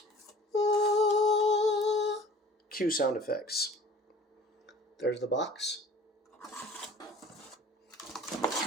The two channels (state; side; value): normal; both; correlation 0.47